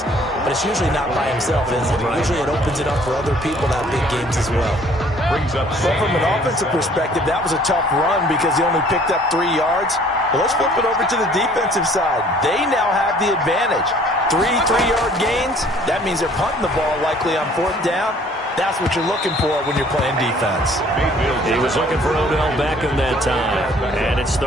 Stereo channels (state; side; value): normal; both; correlation 0.56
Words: but it's usually not by himself, is it? Right. Usually it opens it up for other people to have big games as well. Brings up but from an offensive perspective, that was a tough run because he only picked up 3 yards. Well, let's flip it over to the defensive side. They now have the advantage. 3 3-yard gains. That means they're punting the ball likely on 4th down. That's what you're looking for when you're playing defense. He was looking for Odell Beckham that time, and it's